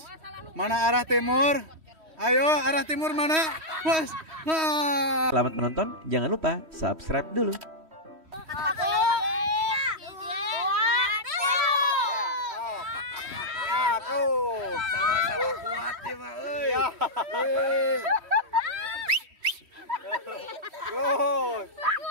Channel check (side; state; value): left; late; 3.1 ms